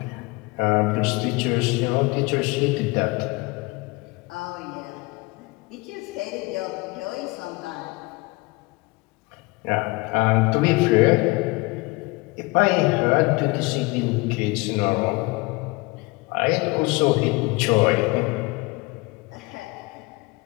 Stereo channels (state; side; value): quieter; right; 24.8 dB